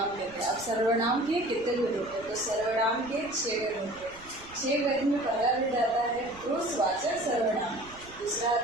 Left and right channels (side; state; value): right; noise; rumble, 22 dB below the sound